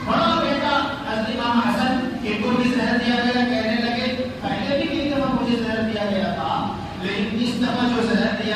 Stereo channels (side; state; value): both; identical; correlation 1.00